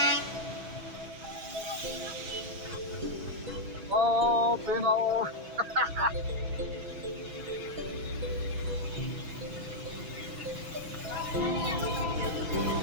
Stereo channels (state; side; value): late; left; 6.1 ms